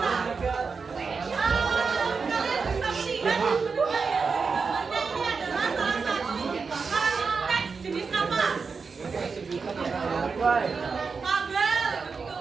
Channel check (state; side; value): quieter; left; 5.0 dB